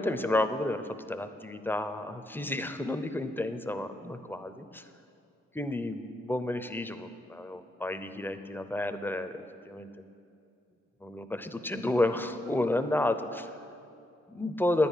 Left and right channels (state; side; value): normal; both; correlation 0.81